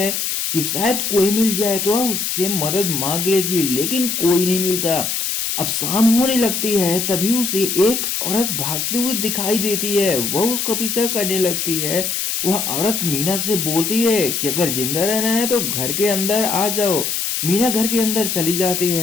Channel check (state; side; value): noise; left; hiss, 1 dB below the sound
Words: कि शायद कोई मिल जाए तो वह उससे मदद मांग लेगी, लेकिन कोई नहीं मिलता। अब शाम होने लगती है तभी उसे एक औरत भागते हुए दिखाई देती है। वह उसका पीछा करने लगती है। वह औरत मीना से बोलती है कि अगर जिंदा रहना है तो घर के अंदर आ जाओ। मीना घर के अंदर चली जाती